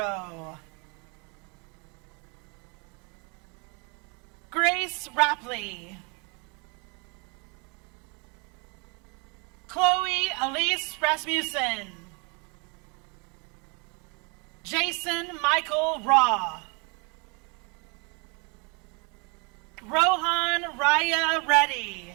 Grace Rapley, Chloe Elise Rasmussen, Jason Michael Raw, Rohan Raya Reddy,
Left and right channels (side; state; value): left; quieter; 32.4 dB